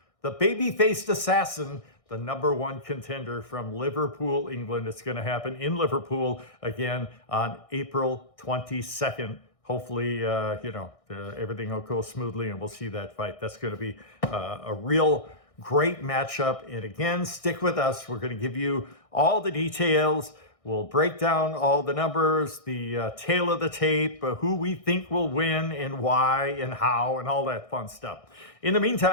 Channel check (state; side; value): late; right; 1.6 ms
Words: the baby-faced assassin, the #1 contender from Liverpool, England. It's going to happen in Liverpool again on April 22nd. Hopefully, everything will go smoothly and we'll see that fight. That's going to be a real great matchup. And again, stick with us. We're going to give you all the details. We'll break down all the numbers, the tail of the tape, who we think will win and why and how and all that fun stuff. In the